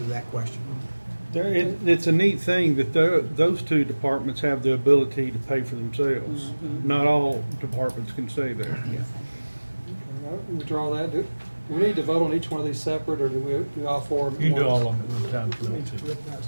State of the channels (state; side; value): inverted; both; correlation -1.00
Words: that question. It's a neat thing that those 2 departments have the ability to pay for themselves. Not all departments can say that. Withdraw that. Do we need to vote on each one of these separate, or do we do all 4 of them? You can do all of them at one time if you want to. Recognize